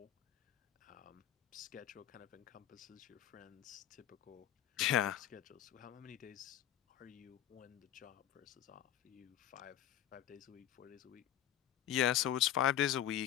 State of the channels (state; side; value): quieter; right; 11.6 dB